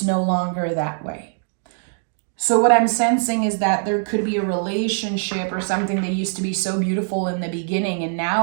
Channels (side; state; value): left; silent; digital silence